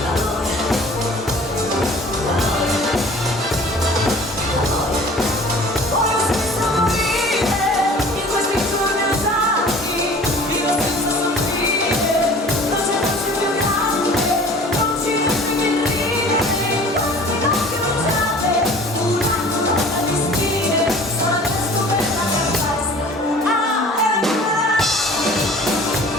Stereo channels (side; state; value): both; normal; correlation 0.46